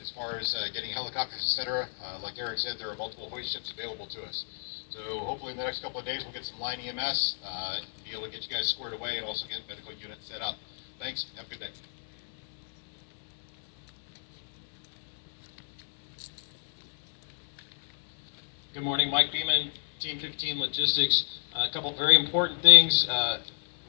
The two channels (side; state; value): right; silent; 57 dB below the other